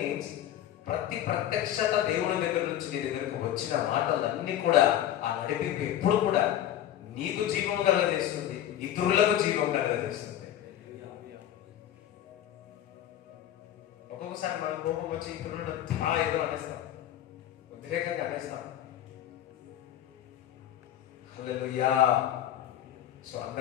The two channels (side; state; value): right; quieter; 11.6 dB